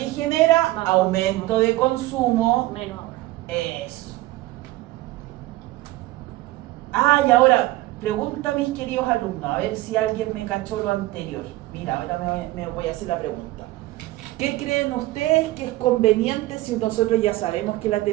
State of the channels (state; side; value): quieter; left; 17.9 dB